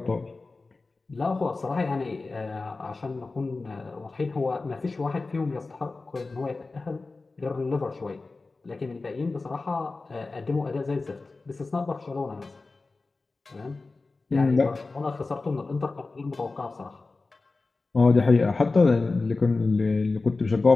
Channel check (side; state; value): right; quieter; 3.7 dB